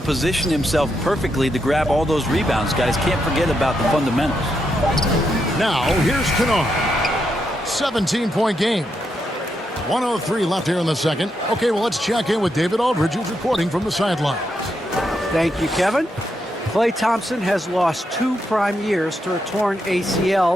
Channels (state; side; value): normal; both; correlation 0.82